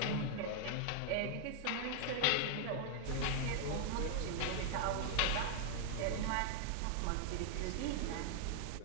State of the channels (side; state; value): both; different; correlation 0.00